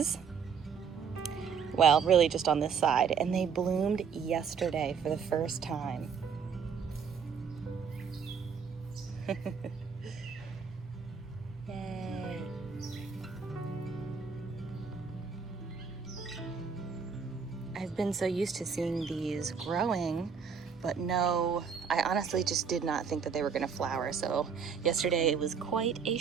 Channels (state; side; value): quieter; left; 6.4 dB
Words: Well, really just on this side. And they bloomed yesterday for the first time. Yay. I've been so used to seeing these growing, but no, I honestly just did not think that they were gonna flower. So yesterday it was quite a